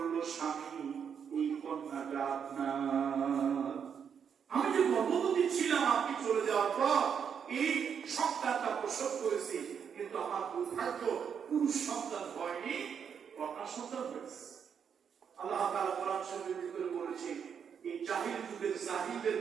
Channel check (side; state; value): left; quieter; 7.4 dB